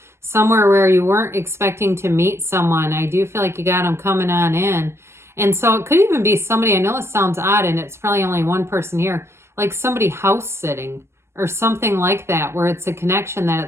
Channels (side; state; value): left; late; 0.13 ms